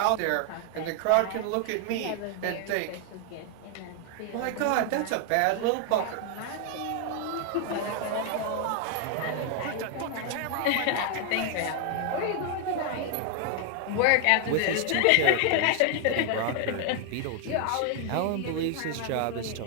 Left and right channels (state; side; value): different; both; correlation 0.00